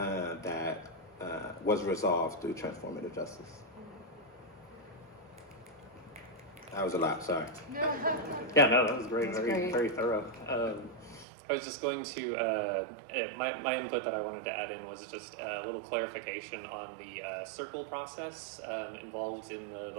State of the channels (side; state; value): left; drops out; at 11.2 s